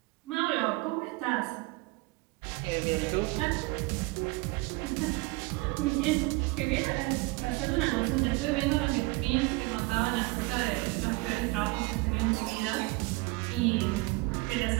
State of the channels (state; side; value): quieter; left; 23.9 dB